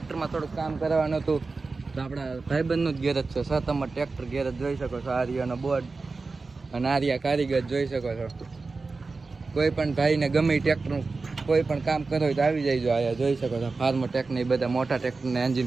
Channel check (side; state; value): left; quieter; 4.0 dB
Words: થોડુંક કામ કરવાનું હતું. તો આપણા ભાઈબંધનું જ ગેરેજ છે, સતમ ટ્રેક્ટર ગેરેજ જોઈ શકો છો. આર્યાનો બોર્ડ અને આર્યા કારીગર જોઈ શકો છો. કોઈ પણ ભાઈને ગમે ટ્રેક્ટરનું કોઈ પણ કામ કરો હોય તો આવી જાય. જો આયા જોઈ શકો છો ફાર્મર ટેકને બધા મોટા ટ્રેક્ટરના